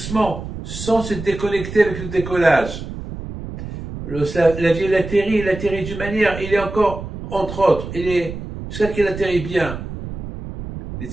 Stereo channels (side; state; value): right; noise; rumble, 9 dB below the sound